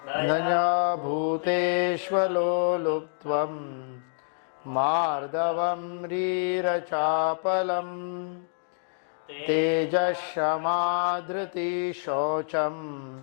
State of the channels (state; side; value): silent; right; digital silence